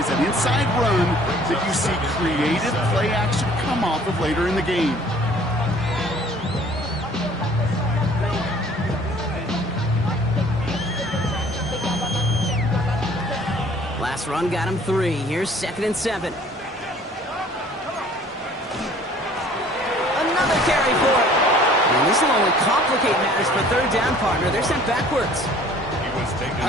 an inside run, that you see creative play action come off of later in the game. Last run got him 3. Here's 2nd and 7. Another carry for it. And this will only complicate matters for third down, partner. They're sent backwards.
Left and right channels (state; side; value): normal; both; correlation 0.53